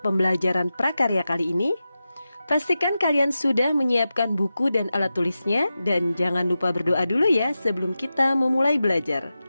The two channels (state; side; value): inverted; both; correlation -0.92